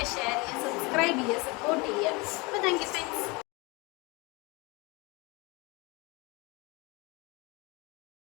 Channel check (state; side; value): quieter; right; 26.4 dB